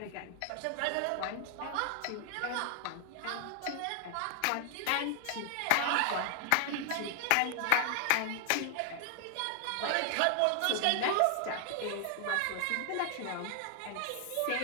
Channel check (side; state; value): both; different; correlation 0.00